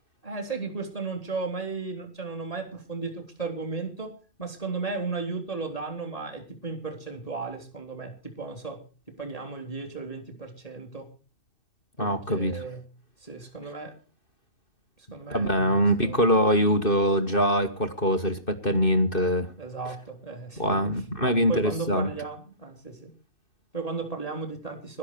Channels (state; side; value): late; right; 2.5 ms